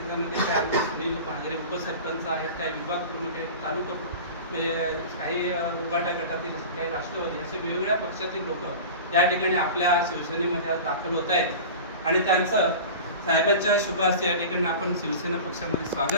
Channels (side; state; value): both; inverted; correlation -0.34